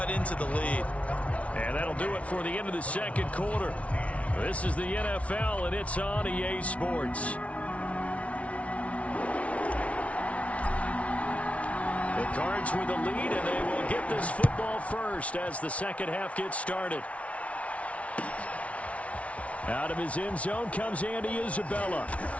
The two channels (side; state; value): right; late; 0.064 ms